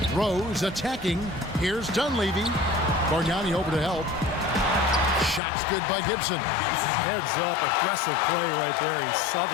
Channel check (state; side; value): drops out; right; at 5.4 s